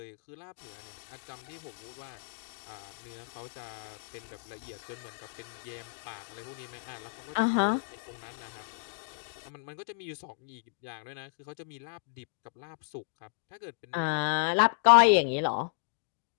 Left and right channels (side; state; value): right; silent; digital silence